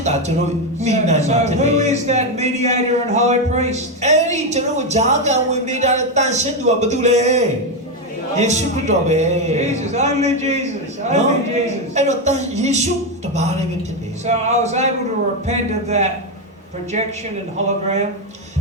တာကျွန်တော်မိနိုင်မှာဖြစ် So တယ် who is that mediator and high priest? အဲ့ဒီကျွန်တော်ဂျားကန်ဝင်ပေးတဲ့တန်ရှင်းသူကဘာတူလဲယေရှုခရစ်တော်ပဲ Jesus, only Jesus, only Jesus. အဲ့တော့ယေရှုတပါးလည်းပဲဖြစ်တယ် So I was able to repent of that projection and hologram.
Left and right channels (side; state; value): both; normal; correlation 0.07